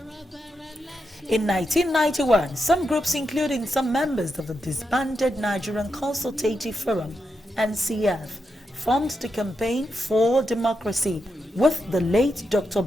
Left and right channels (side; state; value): both; normal; correlation 0.85